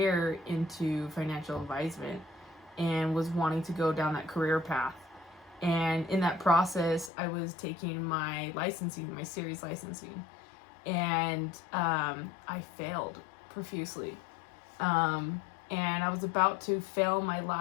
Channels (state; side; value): drops out; right; at 7.1 s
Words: into financial advisement and was wanting to go down that career path. And in that process, I was taking my licensing, my series licensing, and I failed profusely. And I was about to fail my